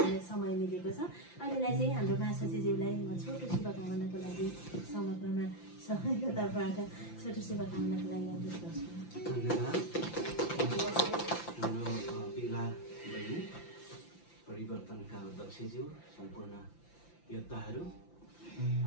समय मिलेको छ अहिलेलाई चाहिँ हाम्रो मासाजीज्यूलाई म छोटो शुभकामनाको लागि समग्रमा सबैको तर्फबाट छोटो शुभकामनाको लागि अनुरोध गर्छु हाम्रो विवाह बहिनी परिवर्तनका अध्यक्षज्यू सम्पूर्ण योद्धाहरू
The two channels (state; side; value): late; right; 5.9 ms